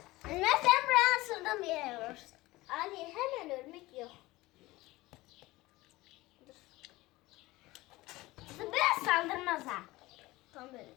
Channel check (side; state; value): right; quieter; 19.5 dB